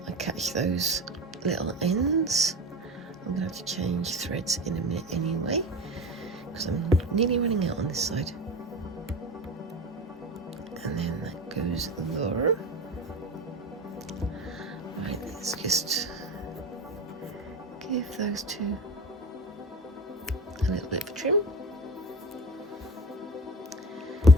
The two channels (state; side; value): normal; both; correlation 0.32